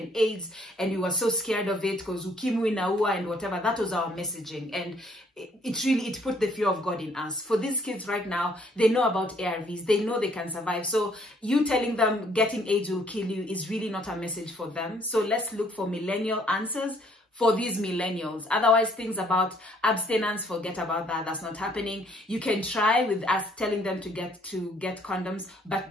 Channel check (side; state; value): both; normal; correlation 0.64